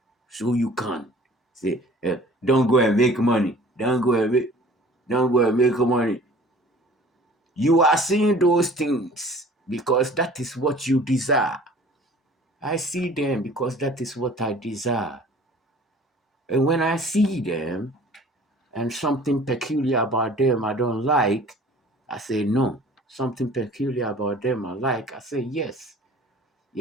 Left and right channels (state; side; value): normal; both; correlation 0.48